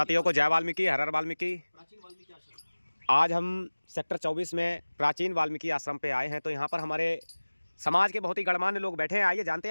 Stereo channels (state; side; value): inverted; both; correlation -1.00